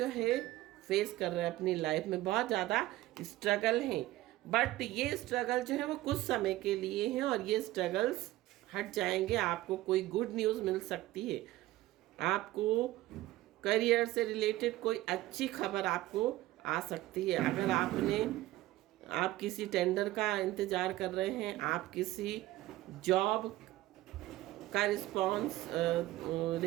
है फेस कर रहे हैं अपनी लाइफ में, बहुत ज़्यादा स्ट्रगल हैं। बट ये स्ट्रगल जो है वो कुछ समय के लिए हैं और ये स्ट्रगल्स हट जाएंगे। आपको कोई गुड न्यूज़ मिल सकती है, आपको करियर से रिलेटेड कोई अच्छी खबर आपको आ सकती है। अगर आप किसी टेंडर का इंतज़ार कर रहे हैं, आप किसी जॉब का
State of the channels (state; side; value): quieter; left; 16.7 dB